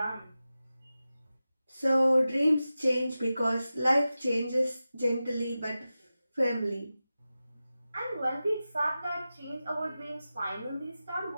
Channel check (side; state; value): both; inverted; correlation -0.94